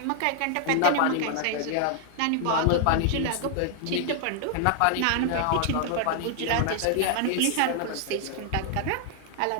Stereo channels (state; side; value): different; both; correlation 0.00